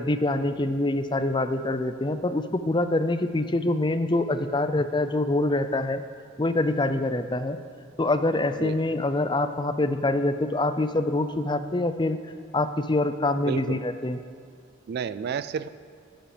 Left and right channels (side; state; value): both; normal; correlation 0.58